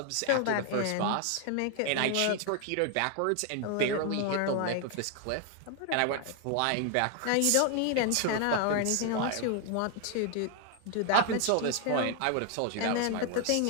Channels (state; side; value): different; both; correlation 0.00